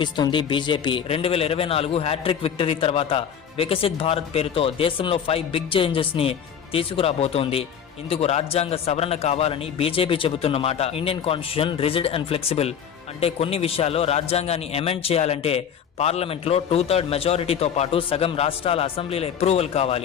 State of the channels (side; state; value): right; quieter; 8.1 dB